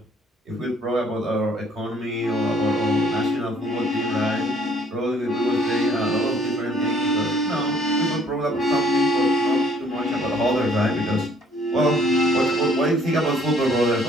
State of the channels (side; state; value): both; normal; correlation 0.60